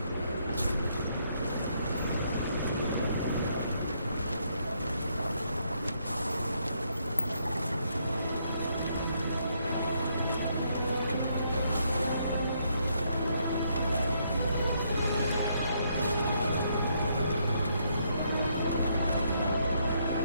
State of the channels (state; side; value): inverted; both; correlation -0.73